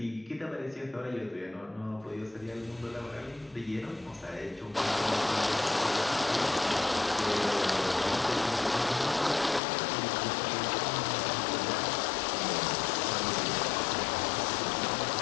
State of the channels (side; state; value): right; drops out; at 9.6 s